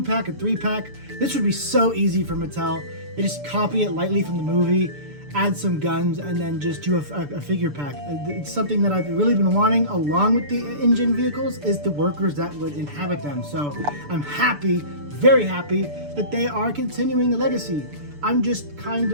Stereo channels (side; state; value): left; late; 6.9 ms